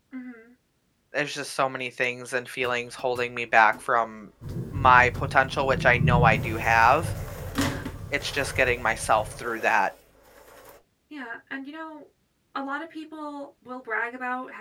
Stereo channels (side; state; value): both; identical; correlation 1.00